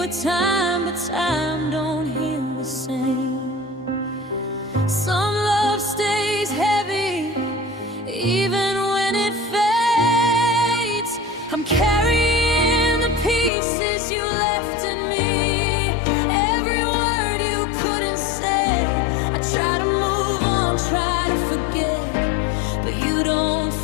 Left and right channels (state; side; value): drops out; right; at 13.5 s